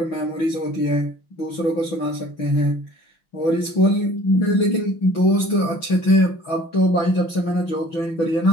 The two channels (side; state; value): right; late; 6.1 ms